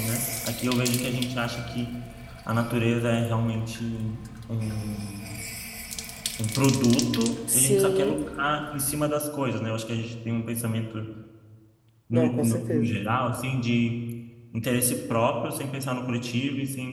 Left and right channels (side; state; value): both; identical; correlation 1.00